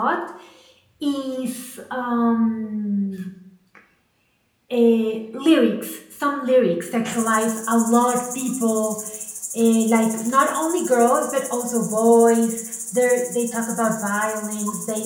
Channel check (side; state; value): both; identical; correlation 1.00